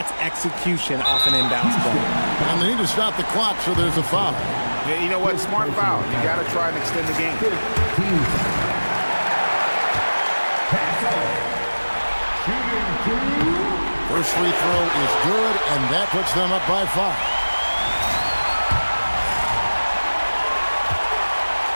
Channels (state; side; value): inverted; both; correlation -1.00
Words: execution off an inbounds play. And they need to stop the clock, so there's a foul. Yeah, you know what? Smart foul. You got to try and extend the game. First free throw is good, and that puts them up by 5.